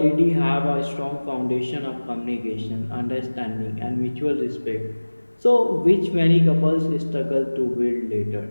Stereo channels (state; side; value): inverted; both; correlation -1.00